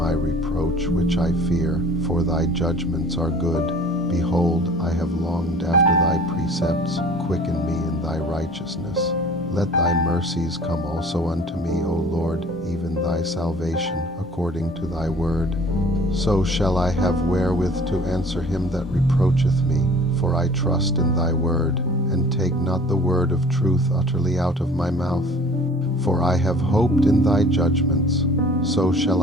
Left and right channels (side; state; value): both; normal; correlation 0.48